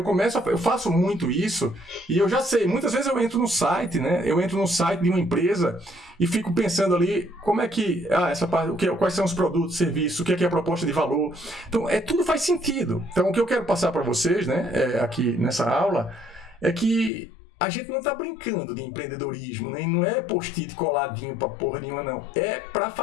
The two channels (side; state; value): right; drops out; at 17.1 s